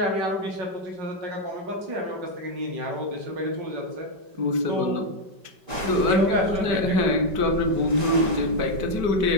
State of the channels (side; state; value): left; late; 5.2 ms